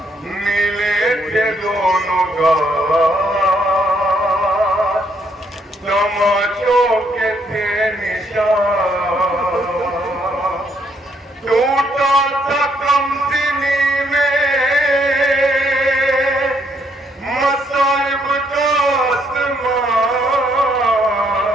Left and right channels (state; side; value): normal; both; correlation 0.71